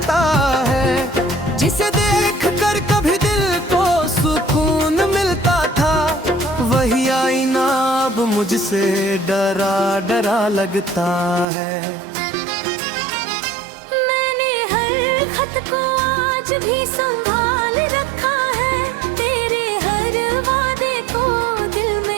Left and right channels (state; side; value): drops out; left; at 11.5 s